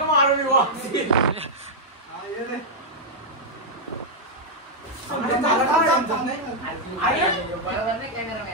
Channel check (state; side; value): normal; both; correlation -0.05